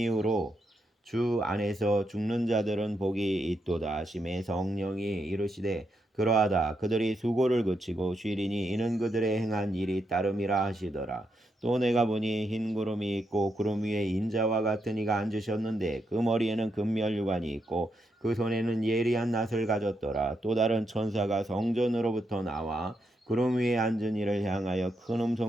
주 안에서 죽는 자들은 복이 있도다 하심에 성령이 이르시되 그러하다. 그들이 수고를 그치고 쉬리니 이는 그들의 행한 일이 따름이라 하시더라. 또 내가 보니 흰 구름이 있고 구름 위에 인자와 같은 이가 앉으셨는데 그 머리에는 금멸유관이 있고 그 손에는 예리한 낫을 가졌더라. 또 다른 천사가 성전으로부터 나와 구름 위에 앉은 이를 향하여 큰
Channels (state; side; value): normal; both; correlation 0.81